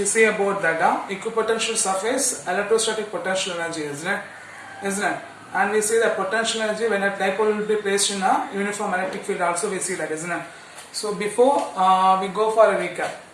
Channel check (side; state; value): both; identical; correlation 1.00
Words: see about that equipotential surface, electrostatic potential energy, isn't it? Isn't it? And we see the potential energy when a dipole will be placed in a uniform electric field also we see that, isn't it? So before we go for a recap.